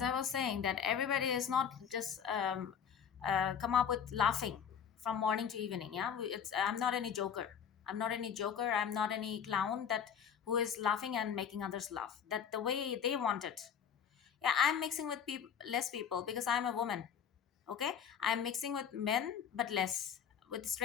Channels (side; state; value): right; quieter; 7.8 dB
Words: I was saying, that everybody is not just come up with laughing from morning to evening. Yeah, it's I'm not any joker. I'm not any joker. I'm not any clown that who is laughing and making others laugh. That the way they want it. Yeah, I'm mixing with people, less people because I'm a woman. Okay, I'm mixing with men, but less. With